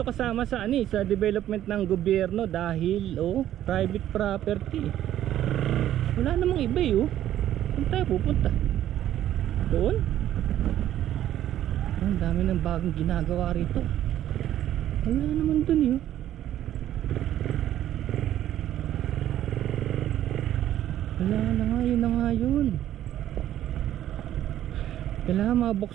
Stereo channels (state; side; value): quieter; left; 12.1 dB